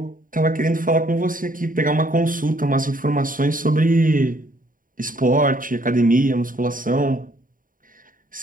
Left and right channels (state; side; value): late; left; 0.40 ms